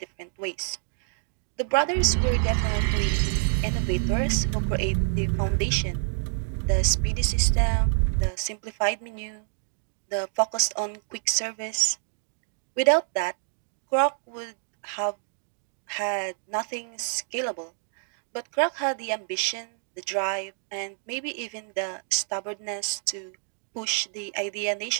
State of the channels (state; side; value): silent; left; digital silence